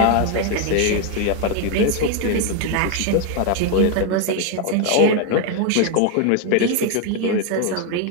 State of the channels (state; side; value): different; both; correlation 0.01